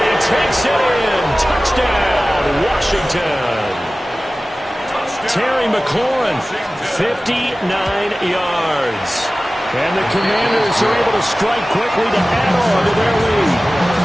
he takes it in. Touchdown, Washington. Terry McLaurin, 59 yards. And the Commanders are able to strike quickly to add on to their lead.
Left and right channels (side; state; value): both; normal; correlation 0.97